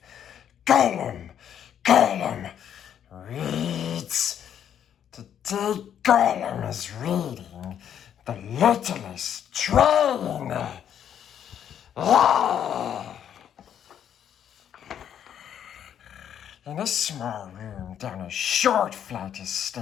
Gollum Reads. Today Gollum is reading The Littlest Train. In a small room down a short flight of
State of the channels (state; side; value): quieter; right; 9.4 dB